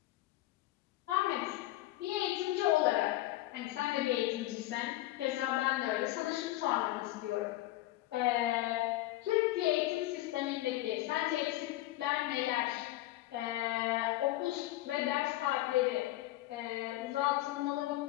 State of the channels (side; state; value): right; quieter; 16.6 dB